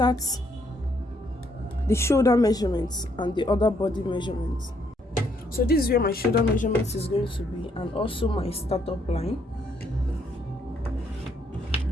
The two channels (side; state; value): both; normal; correlation 0.71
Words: the shoulder measurements and the other body measurements. So this is where my shoulder measurement is going to be and also my startup line.